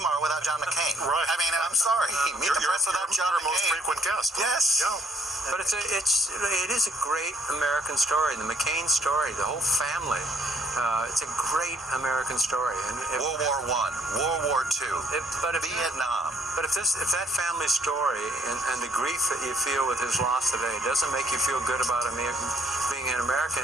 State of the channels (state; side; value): normal; both; correlation 0.64